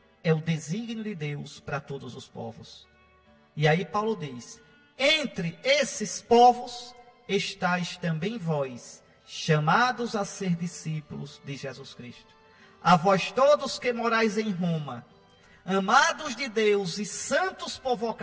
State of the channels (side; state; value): both; identical; correlation 1.00